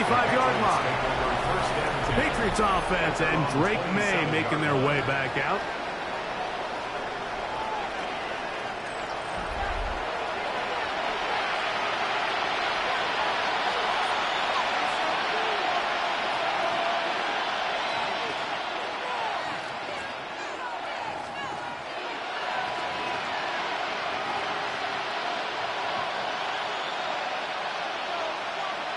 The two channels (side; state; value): both; identical; correlation 1.00